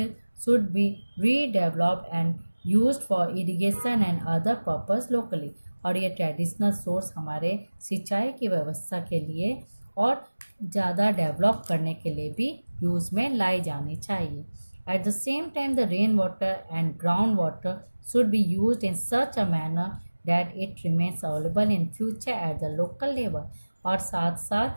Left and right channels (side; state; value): both; inverted; correlation -1.00